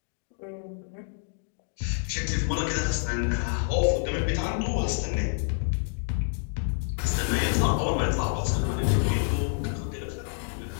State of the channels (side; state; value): right; silent; 59 dB below the other